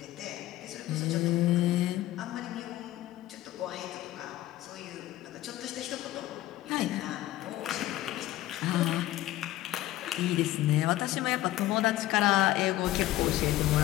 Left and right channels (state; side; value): quieter; right; 15.2 dB